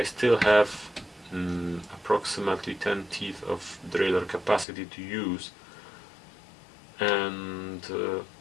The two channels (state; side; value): drops out; right; at 4.7 s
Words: still have approximately 10 teeth of derailleur capacity to use, and